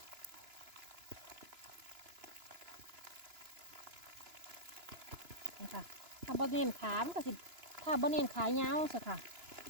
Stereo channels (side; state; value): left; late; 2.9 ms